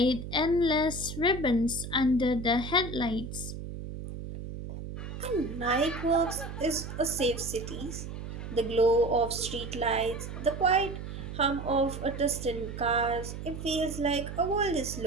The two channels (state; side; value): noise; right; hum, 8 dB below the sound